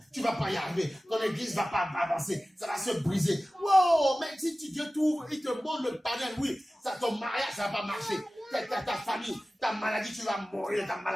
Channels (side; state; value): both; normal; correlation 0.96